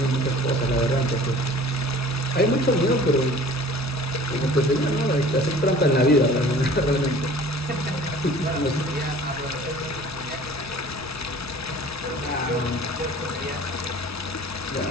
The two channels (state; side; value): normal; both; correlation 0.47